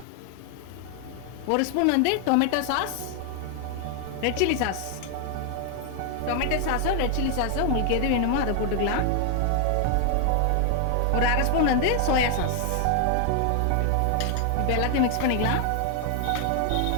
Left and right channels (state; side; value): different; both; correlation 0.00